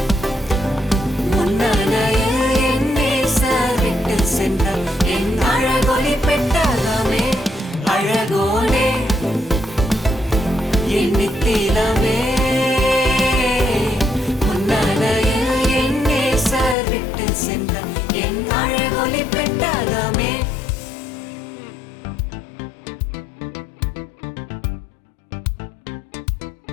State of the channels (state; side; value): drops out; right; at 16.8 s